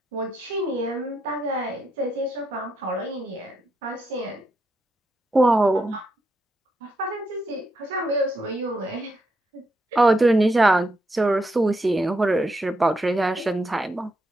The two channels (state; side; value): normal; both; correlation 0.80